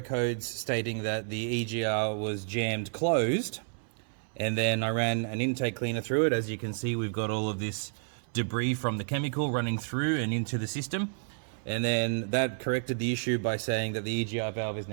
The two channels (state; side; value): silent; left; 58 dB below the other